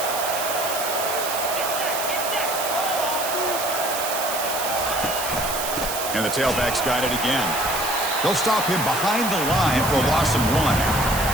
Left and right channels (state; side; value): noise; right; hiss, 4 dB below the sound